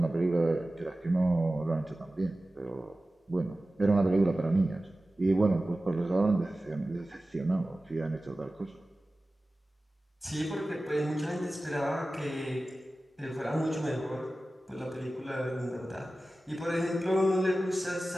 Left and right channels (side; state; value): both; normal; correlation 0.96